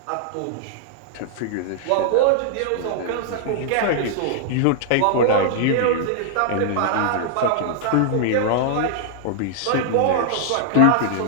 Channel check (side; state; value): both; different; correlation -0.01